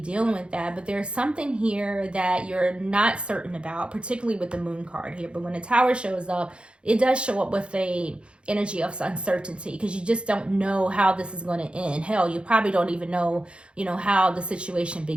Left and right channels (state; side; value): late; left; 0.057 ms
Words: with that, but there's something here that you're not certain about, particularly with the Moon card here. But when the Tower shows up, it does show up with a energy of uncertainty, because you just don't know how this is going to end. Hell, you probably don't even know, you know, how the situation